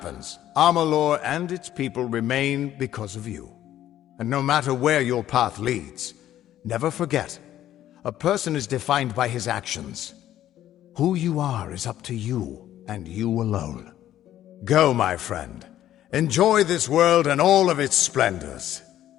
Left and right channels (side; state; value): right; quieter; 12.4 dB